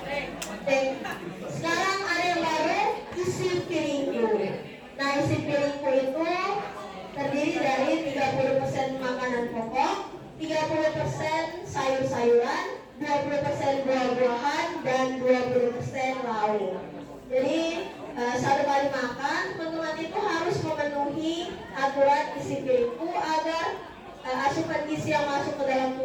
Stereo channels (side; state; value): both; identical; correlation 1.00